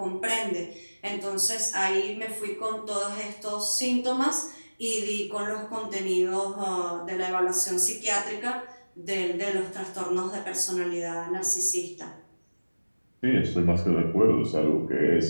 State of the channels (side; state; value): both; inverted; correlation -1.00